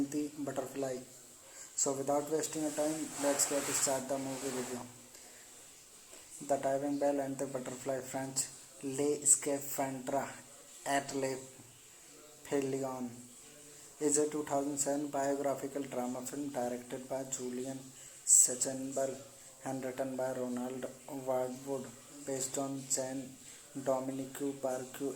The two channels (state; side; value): identical; both; correlation 1.00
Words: the Butterfly. So without wasting a time, let's get start the movie review. The Diving Bell and the Butterfly, French Les Scaphandres et les Pelions, is a 2007 biographical drama film directed by Julian Sachenberg and written by Ronald Wardwood, based on Jean-Dominique